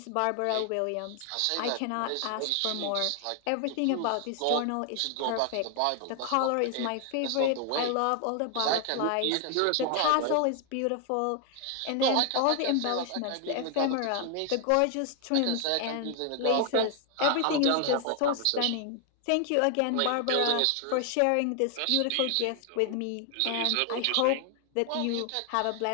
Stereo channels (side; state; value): both; different; correlation 0.00